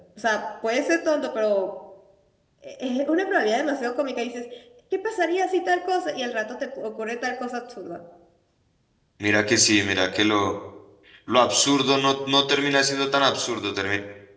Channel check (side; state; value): both; identical; correlation 1.00